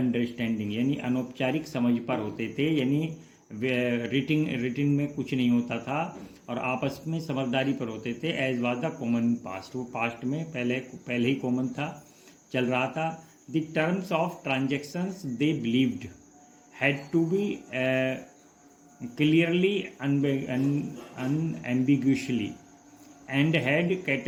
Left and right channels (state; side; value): identical; both; correlation 1.00